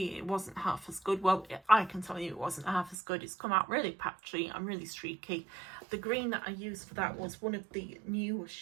it wasn't half as good. Well, I can tell you it wasn't half as good. It's come out really patchy and really streaky. The green that I used for that was one of the new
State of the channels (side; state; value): left; drops out; at 3.0 s